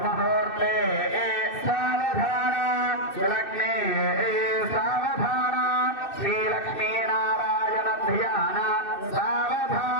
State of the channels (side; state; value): right; late; 2.6 ms